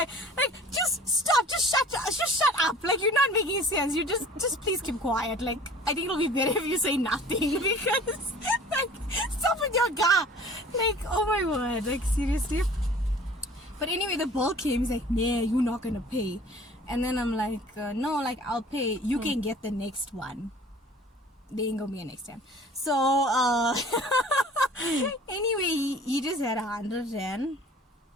just stop, just shut up. Like you're not making sense. You just please keep quiet. Like I think it'll be better if you say nothing because like stop with your ga. Like oh my word, like seriously. But anyway, the bill came. He's like, nah, you're not gonna pay. And then I'm like, no, like I'll pay. You can get the next one. They ain't gonna be a next time. So anyway, he just had 100 rand.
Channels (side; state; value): both; normal; correlation 0.47